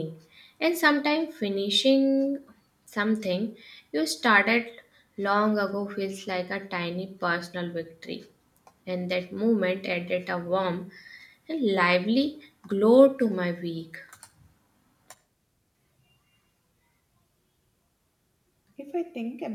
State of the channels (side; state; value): both; identical; correlation 1.00